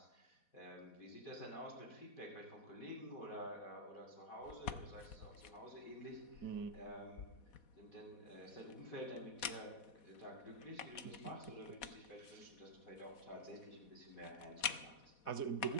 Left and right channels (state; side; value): late; right; 4.1 ms